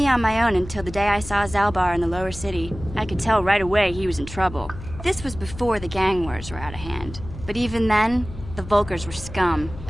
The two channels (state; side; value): noise; left; hum, 13 dB below the sound